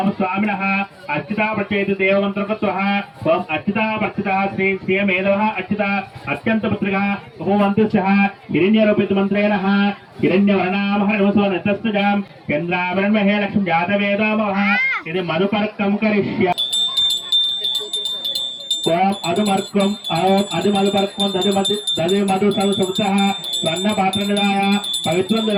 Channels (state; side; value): identical; both; correlation 1.00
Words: स्वामिनः अर्चिता प्रचेतु देवमन्त्रकत्वः ओम अर्चिता प्रचितः श्री श्रीमेधवः अर्चिता अत्यन्तपुत्रिकः भगवन्तस्यः हिरण्यरूपितमन्त्रेणः हिरण्यवर्णामहर्मसोनतस्तजां चन्द्रावरणमहे लक्ष्मीजातवेदोमवः इति मधुपर्कं करिष्यामि ओम अधुमर्कम ओम अधुमधुपर्कम दधि मधु संसुप्तः स्वर्ण पात्र निधाय पवित्रं